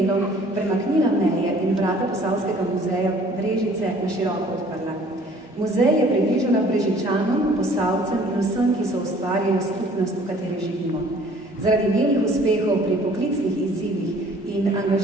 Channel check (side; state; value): both; normal; correlation 0.54